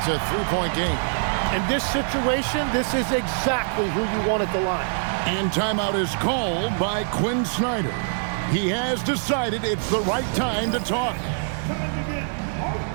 a 3-point game. In this situation, this is exactly who you want at the line. And timeout is called by Quinn Snyder. He has decided it's the right time to talk. Time to get out.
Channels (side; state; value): left; silent; digital silence